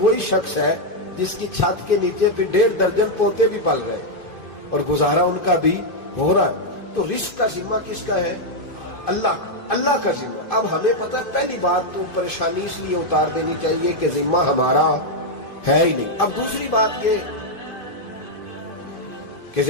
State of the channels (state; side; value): late; right; 2.5 ms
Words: شخص ہے جس کی چھت کے نیچے پھر 1.5 درجن پوتے بھی پل رہے اور گزارا ان کا بھی ہو رہا ہے۔ تو رزق کا ذمہ کس کا ہے؟ اللہ کا ذمہ۔ اب ہمیں پتہ ہے پہلی بات تو پریشانی اس لیے اتار دینی چاہیے کہ ذمہ ہمارا ہے ہی نہیں۔ اب دوسری بات یہ کہ